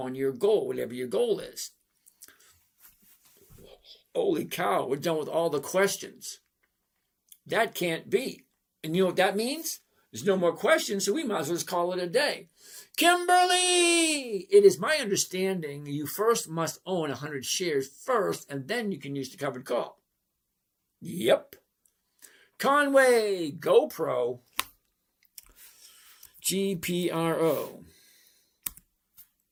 your goal, whatever your goal is. Holy cow, we're done with all the questions. That can't be. And you know what that means? There's no more questions, so we might as well just call it a day. Kimberly! It is my understanding you first must own 100 shares first, and then you can use the covered call. Yep. Conway, GoPro, GPRO.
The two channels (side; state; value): both; identical; correlation 1.00